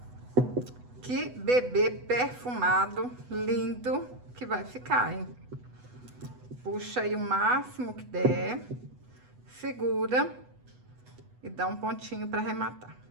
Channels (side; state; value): left; late; 8.1 ms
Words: que bebê perfumado, lindo que vai ficar, hein? Puxa aí o máximo que der, segura e dá um pontinho para arrematar.